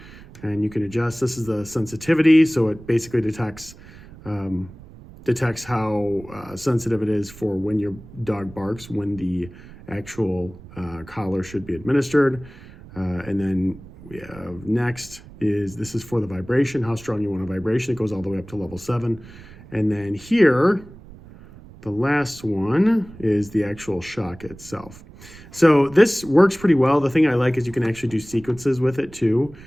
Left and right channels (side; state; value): right; noise; rumble, 19 dB below the sound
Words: and you can adjust. This is the sensitivity, so it basically detects how sensitive it is for when your dog barks, when the actual collar should be administered, and then we have next is, this is for the vibration, how strong you want a vibration. It goes all the way up to level 7. And then here, the last one is the actual shock itself. So this works pretty well. The thing I like is you can actually do sequences with it too.